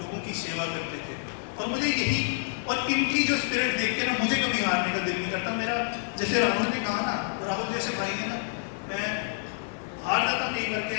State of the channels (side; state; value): right; silent; digital silence